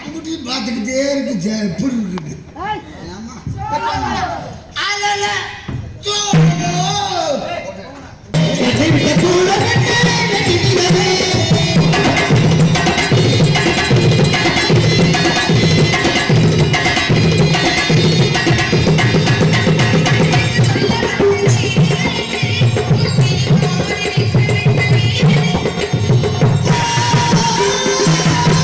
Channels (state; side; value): identical; both; correlation 1.00